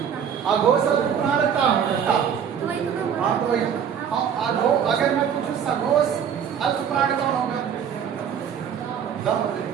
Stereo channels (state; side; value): quieter; left; 8.0 dB